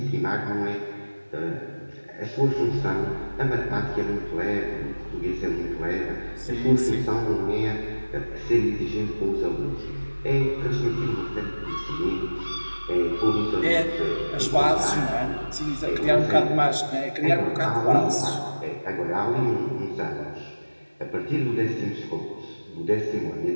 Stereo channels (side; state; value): both; inverted; correlation -1.00